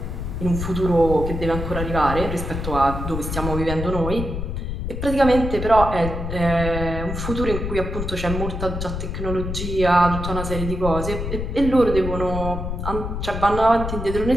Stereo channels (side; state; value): left; noise; rumble, 4 dB below the sound